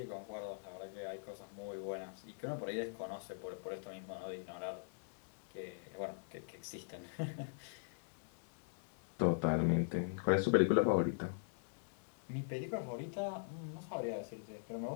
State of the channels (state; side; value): silent; right; digital silence